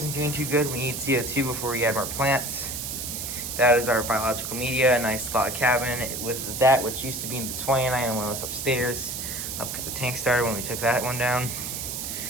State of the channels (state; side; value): noise; right; hiss, 5 dB below the sound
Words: doing too good. We need CO2 before we add more plants. That is our biological media, a nice log cabin with that, which used to be in the 29 and one was upstairs. Up at the tank started when we took that one down.